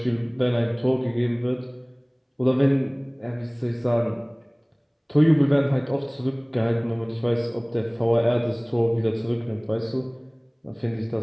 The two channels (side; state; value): both; identical; correlation 1.00